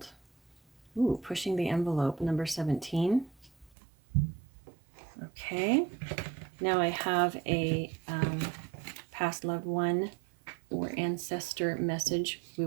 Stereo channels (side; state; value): left; drops out; at 3.7 s